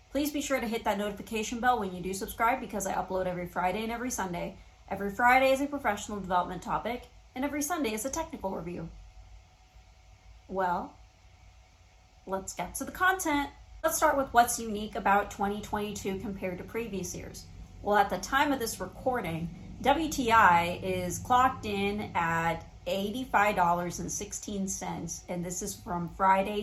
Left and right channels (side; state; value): both; identical; correlation 1.00